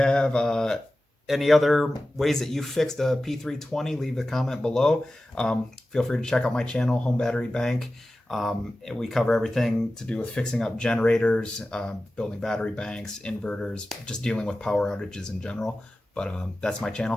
any other ways that you fixed a P320, leave a comment below. Feel free to check out my channel, Home Battery Bank. We cover everything to do with fixing up generators, building battery banks, inverters, just dealing with power outages in general. But that's my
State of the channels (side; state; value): both; normal; correlation 0.95